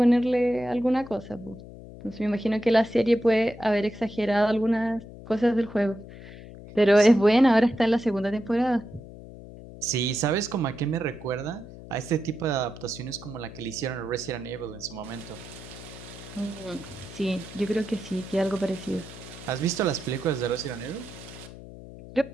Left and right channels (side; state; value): left; noise; hum, 15 dB below the sound